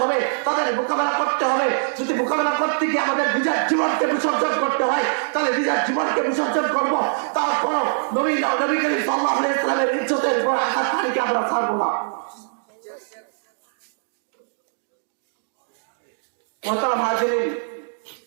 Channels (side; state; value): left; silent; digital silence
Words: হবে, তাদের মোকাবেলা করতে হবে। যদি মোকাবেলা করতে গিয়ে আমাদের নিজের জীবনকে বিসর্জন করতে হয় তাহলে নিজের জীবনকে বিসর্জন করবো। তারপর নবী করিম সাল্লাল্লাহু আলাইহি ওয়াসাল্লামের ইজ্জতের উপর আঘাত হানিকে আমরা ছাড়বো না। মোহতারাম হাজিরিন,